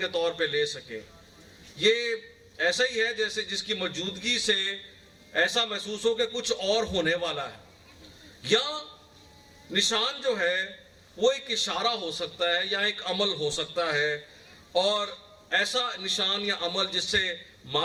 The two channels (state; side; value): identical; both; correlation 1.00